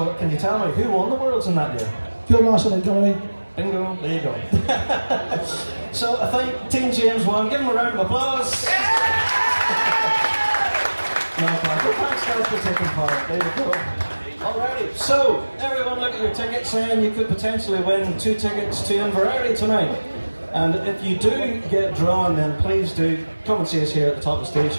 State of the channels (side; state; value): both; inverted; correlation -1.00